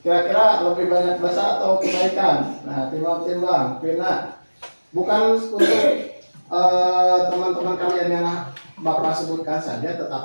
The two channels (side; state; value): both; inverted; correlation -1.00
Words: kira-kira lebih banyak dosa atau kebaikan? Nah, timbang-timbang. Pina, bukan untuk teman-teman kalian yang Bapak sebutkan saja,